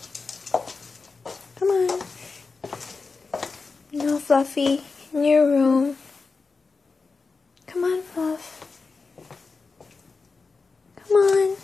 Come on. No, Fluffy. In your room. Come on, Fluff. Come on.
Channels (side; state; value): right; quieter; 4.4 dB